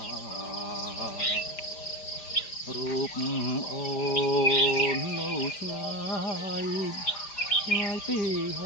រូបអូននៅឆ្ងាយឆ្ងាយពីហ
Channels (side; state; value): right; late; 5.0 ms